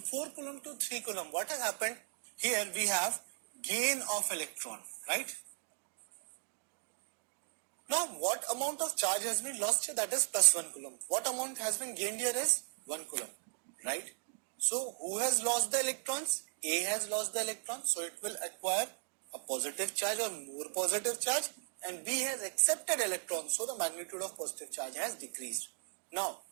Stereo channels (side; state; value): left; silent; digital silence